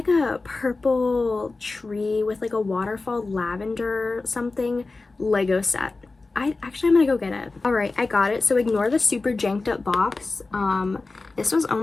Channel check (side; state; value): right; quieter; 3.6 dB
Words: a purple tree with like a waterfall lavender something Lego set. I'm gonna go get it. All right, I got it. So ignore the super janked up box. This was